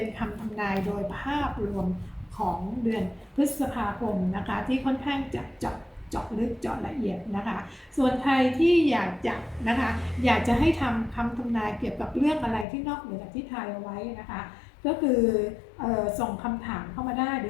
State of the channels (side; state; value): right; drops out; at 12.7 s